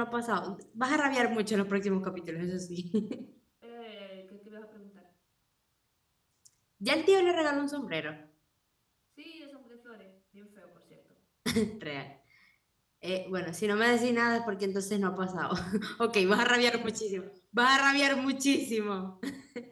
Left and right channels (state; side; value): identical; both; correlation 1.00